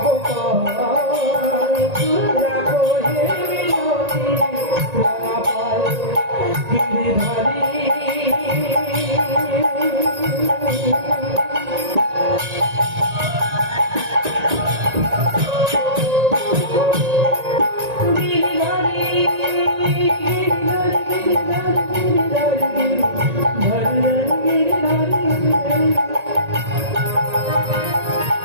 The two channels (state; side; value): late; left; 1.9 ms